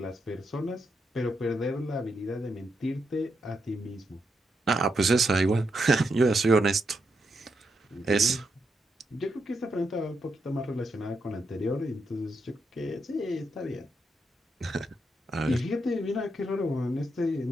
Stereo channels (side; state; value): both; normal; correlation 0.82